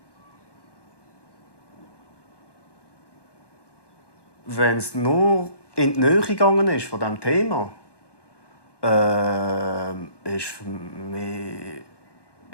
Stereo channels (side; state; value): right; late; 1.2 ms